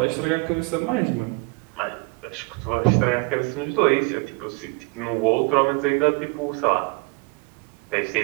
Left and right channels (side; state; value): left; quieter; 27.9 dB